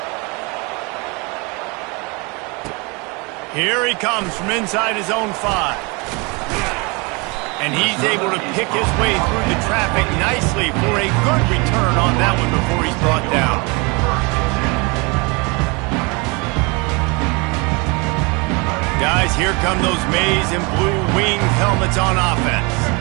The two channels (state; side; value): quieter; left; 29.0 dB